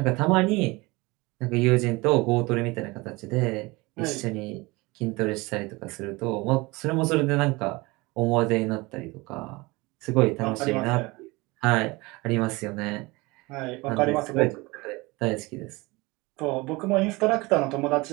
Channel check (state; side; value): quieter; left; 23.6 dB